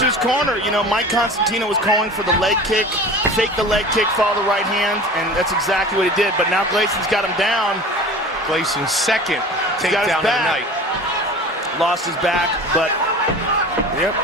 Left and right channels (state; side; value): normal; both; correlation 0.38